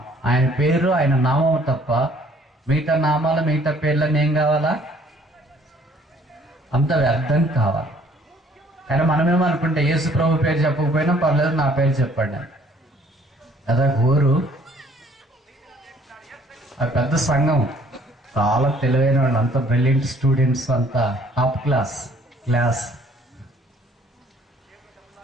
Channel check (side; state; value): both; normal; correlation 0.59